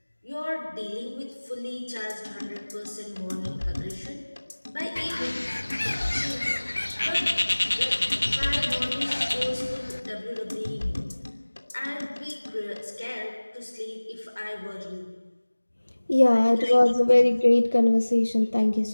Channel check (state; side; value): inverted; both; correlation -1.00